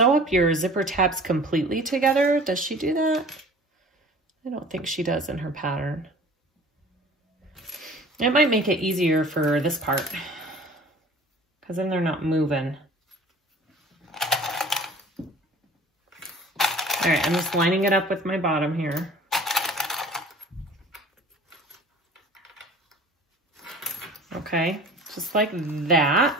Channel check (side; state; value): both; normal; correlation 0.45